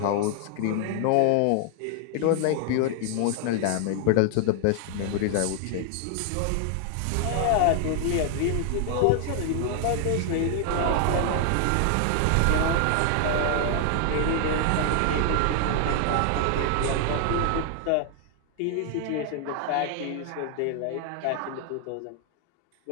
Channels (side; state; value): both; different; correlation 0.00